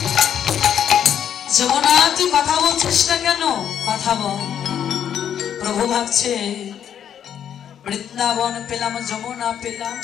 যমুনা তুই কথা বলছিস না কেন? কথা বল। প্রভু ভাবছে বৃন্দাবন পেলাম, যমুনা পেলাম,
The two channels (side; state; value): right; quieter; 9.3 dB